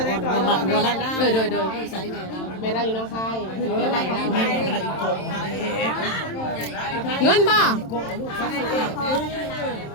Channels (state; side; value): late; right; 27 ms